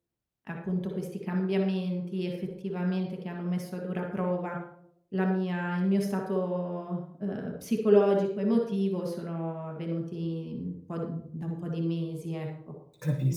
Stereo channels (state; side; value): identical; both; correlation 1.00